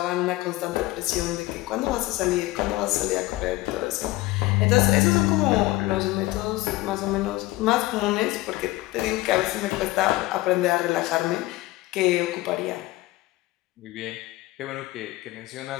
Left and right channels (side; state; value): right; quieter; 18.7 dB